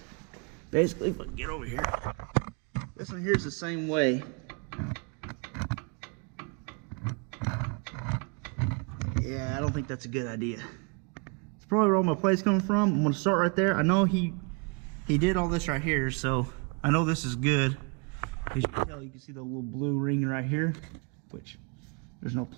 Basically, if I get over here, this one here's the same way. Yeah, I don't think that's a good idea. It's probably where all my play's coming from. I'm gonna start right there. I know he did all this right here, so I know this is good. As you can tell, you can see the little blue ring right here, which there's no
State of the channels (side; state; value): left; quieter; 32.6 dB